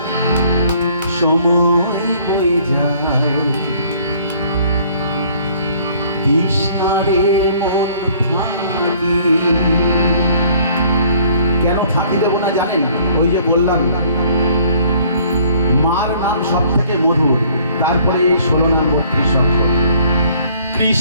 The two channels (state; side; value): inverted; both; correlation -0.58